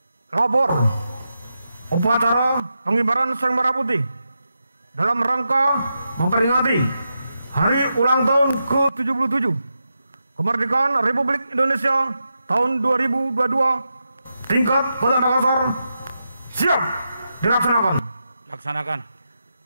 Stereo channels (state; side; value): inverted; both; correlation -0.87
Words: Lapor upacara pengibaran sang merah putih dalam rangka memperingati hari ulang tahun ke-77 kemerdekaan Republik Indonesia tahun 2022 tingkat Kota Makassar siap dilaksanakan.